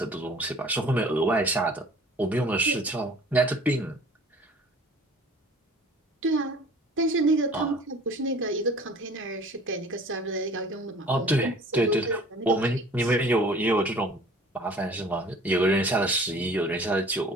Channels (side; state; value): both; normal; correlation 0.48